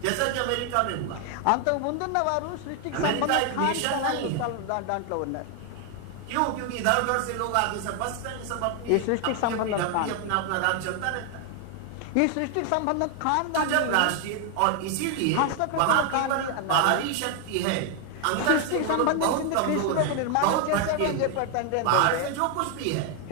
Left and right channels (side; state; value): both; different; correlation 0.00